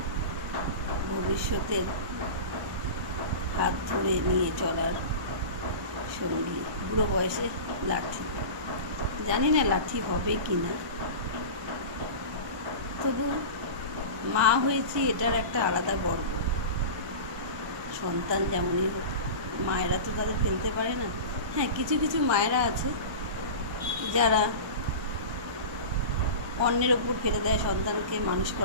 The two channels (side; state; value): left; late; 1.2 ms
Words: ভবিষ্যতের হাত ধরে নিয়ে চলার সঙ্গী। বুড়ো বয়সে লাঠি, জানি না লাঠি হবে কি না, তবু মা হয়েছি এটার একটা আলাদা গর্ব। সন্তান যেমনই হোক, মায়েরা তো তাদের ফেলতে পারে না। হ্যাঁ, কিছু কিছু মায়েরা আছে যারা অন্যের ওপর ফেলে দেয় সন্তানকে মানুষ